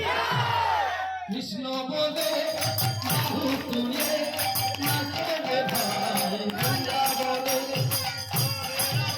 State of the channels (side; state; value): both; identical; correlation 1.00